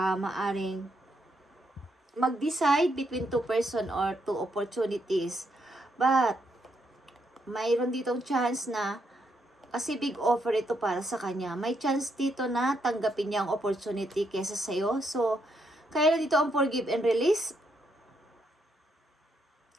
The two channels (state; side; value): normal; both; correlation 0.77